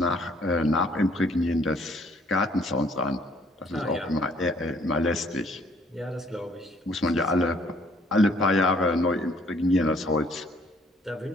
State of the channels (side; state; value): both; normal; correlation 0.62